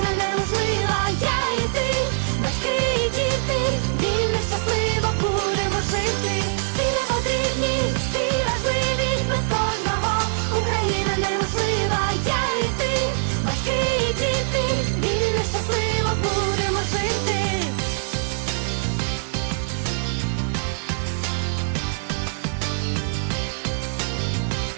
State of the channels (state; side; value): silent; left; digital silence